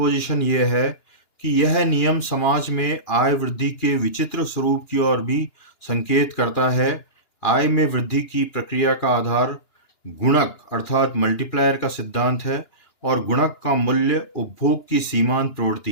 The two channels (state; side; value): late; right; 2.9 ms